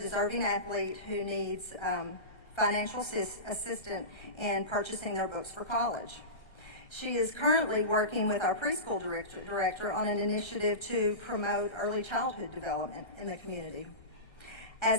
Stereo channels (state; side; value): late; right; 1.3 ms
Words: athlete who needs financial assistance in purchasing their books for college. She is currently working with our preschool director on an initiative to promote early childhood development in the community.